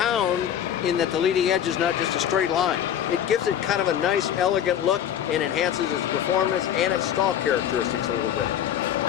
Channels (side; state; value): right; quieter; 9.9 dB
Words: in that the leading edge is not just a straight line. It gives it kind of a nice, elegant look and enhances its performance and its stall characteristics a little bit.